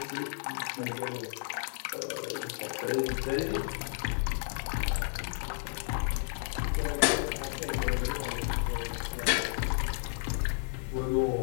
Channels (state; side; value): silent; right; digital silence